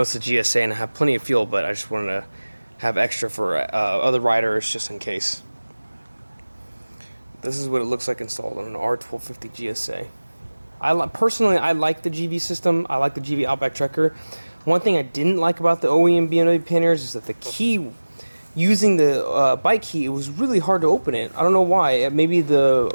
a GSA and I have plenty of fuel, but I just wanted to have extra for other riders just in case. This is what it looks like installed on an R1250GSA. Personally, I like the GIVI system. I like the GIVI Outback Trekker. One thing I didn't like about the OEM BMW panniers is that the key, using the bike key, it was really hard to open it. I don't know why. Maybe the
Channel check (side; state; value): both; inverted; correlation -1.00